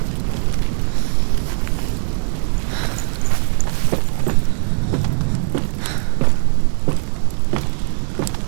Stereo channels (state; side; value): silent; left; digital silence